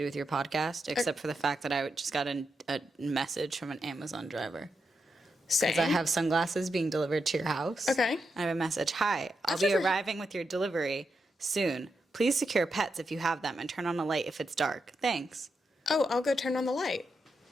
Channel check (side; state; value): both; normal; correlation 0.85